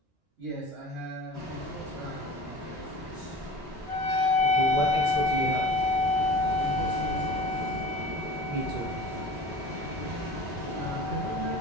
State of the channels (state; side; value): normal; both; correlation 0.39